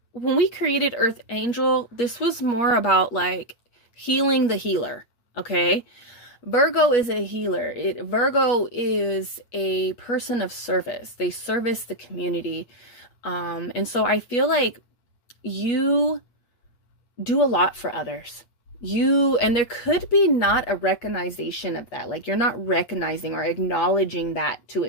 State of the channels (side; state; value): right; late; 8.4 ms